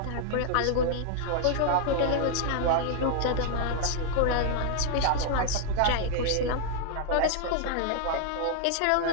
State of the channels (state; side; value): different; both; correlation -0.01